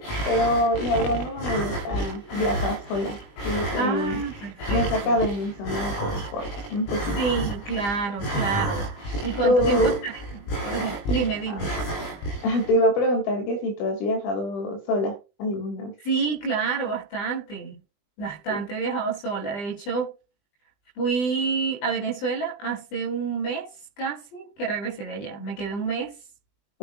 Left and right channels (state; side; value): late; right; 20 ms